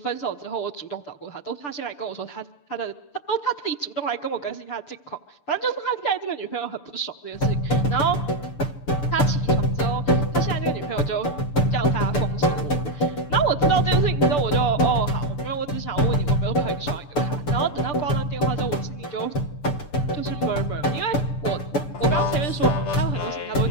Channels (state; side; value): late; right; 6.8 ms